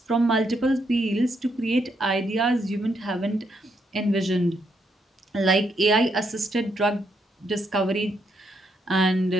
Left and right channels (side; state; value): both; normal; correlation 0.77